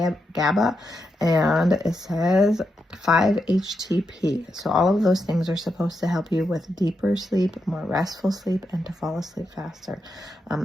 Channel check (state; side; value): normal; both; correlation 0.85